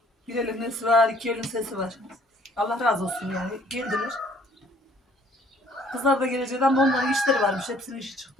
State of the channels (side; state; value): both; normal; correlation 0.59